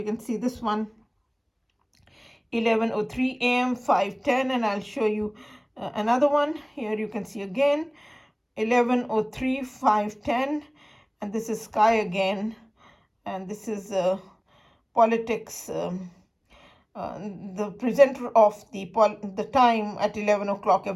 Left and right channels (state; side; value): identical; both; correlation 1.00